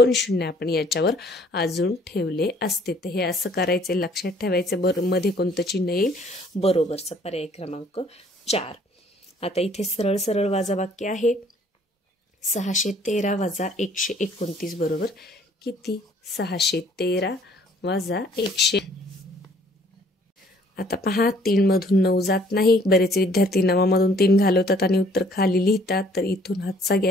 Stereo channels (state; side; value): normal; both; correlation 0.59